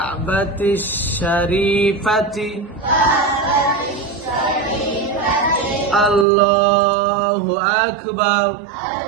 শরীফাতি আল্লাহু আকবার।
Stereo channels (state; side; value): drops out; left; at 6.2 s